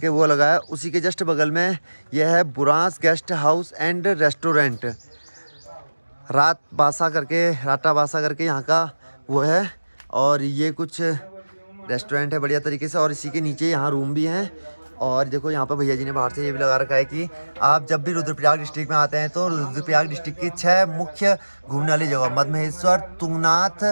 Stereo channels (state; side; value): inverted; both; correlation -1.00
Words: वो लगा है। उसी के जस्ट बगल में यह है Burans guest house and restaurant, Rata Basa करके यहाँ का वो है। और ये कुछ रेस्टोरेंट है बढ़िया तरीके से, और इसी के नीचे यहाँ रूम भी हैं। और देखो यहाँ पर भैया जी ने बाहर से ये भी लगा रखा है कि आप जब भी रुद्रप्रयाग डिस्ट्रिक्ट में आते हैं तो रुद्रप्रयाग डिस्ट्रिक्ट की 6 मुख्य घूमने वाली जगह, मदमहेश्वर, तुंगनाथ,